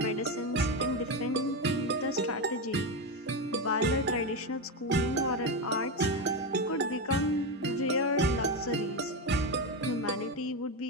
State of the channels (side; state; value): both; normal; correlation 0.12